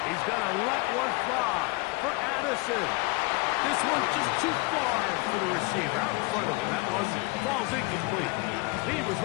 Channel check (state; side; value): quieter; right; 26.1 dB